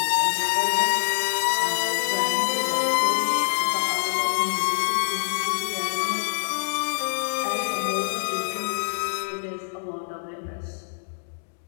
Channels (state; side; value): silent; right; 62 dB below the other